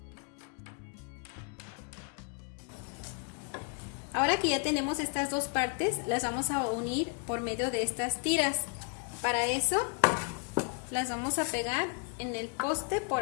Ahora que ya tenemos estas 2 partes, las vamos a unir por medio de estas tiras. Para eso, las vamos a pegar en el poste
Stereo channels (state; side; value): quieter; right; 39.0 dB